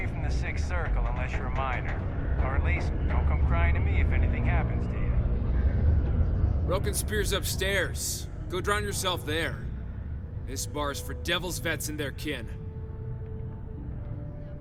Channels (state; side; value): identical; both; correlation 1.00